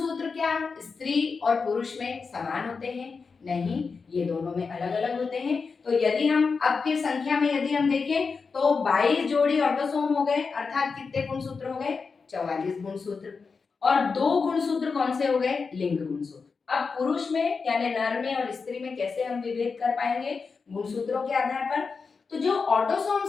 क्या स्त्री और पुरुष में समान होते हैं? नहीं, ये दोनों में अलग अलग होते हैं। तो यदि हम अब फिर संख्या में यदि हम देखें तो 22 जोड़ी ऑटोसोम हो गए, अर्थात कितने गुणसूत्र हो गए, 44 गुणसूत्र। और दो गुणसूत्र कौन से हो गए, लिंग गुणसूत्र। अब पुरुष में यानी नर में और स्त्री में कैसे हम विभेद कर पाएंगे, गुणसूत्रों के आधार पर। तो जो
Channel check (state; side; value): quieter; right; 4.9 dB